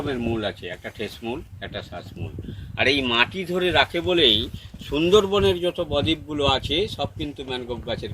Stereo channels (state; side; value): identical; both; correlation 1.00